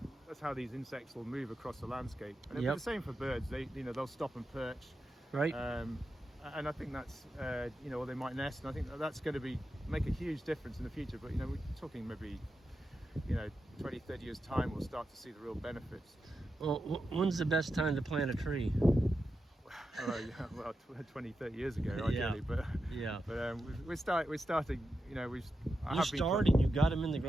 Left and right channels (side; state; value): both; normal; correlation 0.89